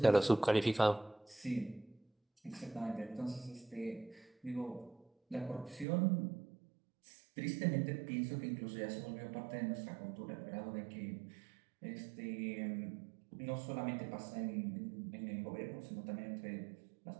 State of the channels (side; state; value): left; drops out; at 5.9 s